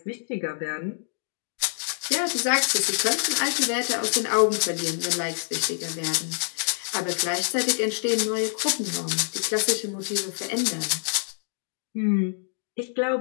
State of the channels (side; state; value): right; silent; digital silence